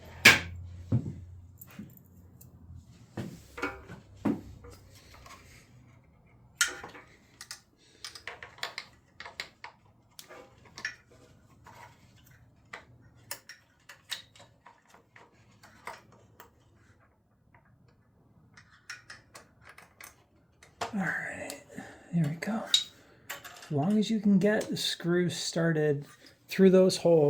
Alright, there we go. As long as you can get the screws started through those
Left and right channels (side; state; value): both; identical; correlation 1.00